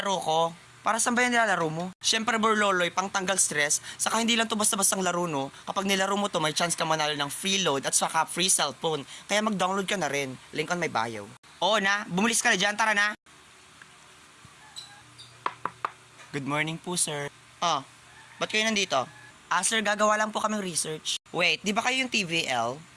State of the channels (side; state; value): both; identical; correlation 1.00